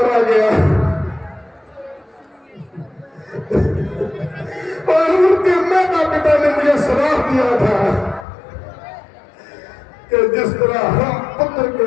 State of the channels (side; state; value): right; drops out; at 8.2 s